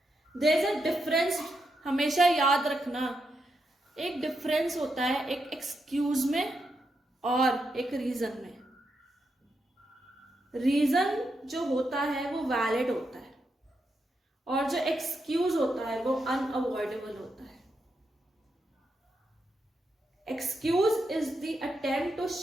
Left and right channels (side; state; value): both; normal; correlation 0.84